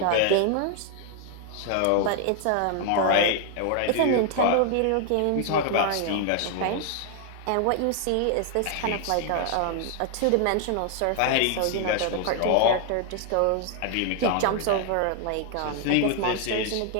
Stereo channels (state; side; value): different; both; correlation 0.00